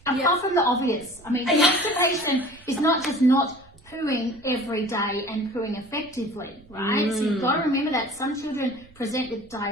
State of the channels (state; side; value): noise; right; rumble, 26 dB below the sound